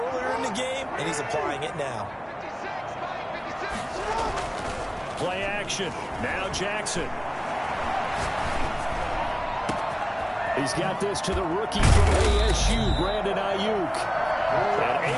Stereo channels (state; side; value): identical; both; correlation 1.00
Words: in the game, and he's applying it now. Play action. Now Jackson. He's got this to the rookie from ASU, Brandon Ayuk. And